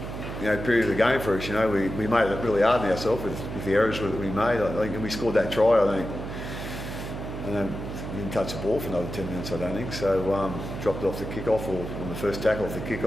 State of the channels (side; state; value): right; noise; hum, 7 dB below the sound